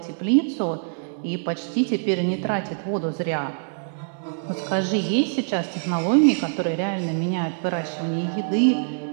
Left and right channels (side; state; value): left; silent; digital silence